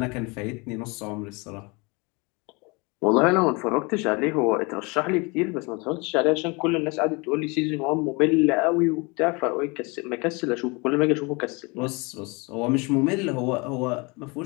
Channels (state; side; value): quieter; right; 28.4 dB